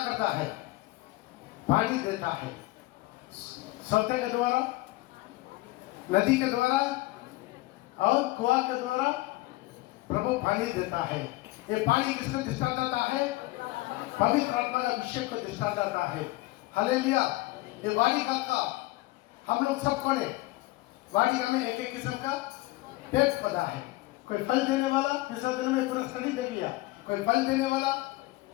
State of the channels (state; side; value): quieter; right; 19.8 dB